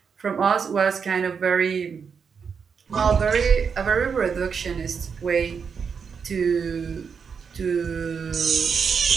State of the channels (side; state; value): left; quieter; 6.2 dB